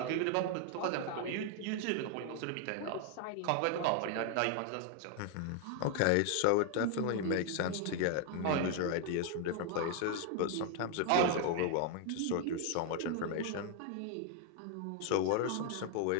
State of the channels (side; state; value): both; different; correlation 0.00